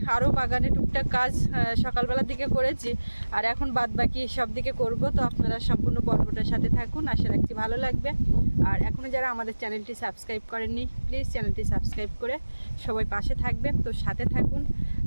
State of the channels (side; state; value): both; inverted; correlation -1.00